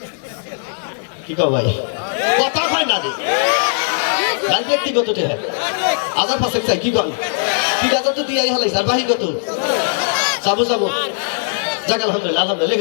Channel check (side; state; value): right; silent; digital silence